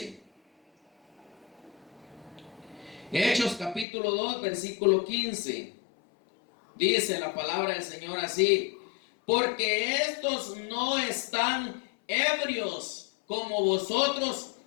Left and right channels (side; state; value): right; drops out; at 3.9 s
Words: Hechos capítulo 2, versículo 15. Dice la palabra del Señor así: porque estos no están ebrios como vosotros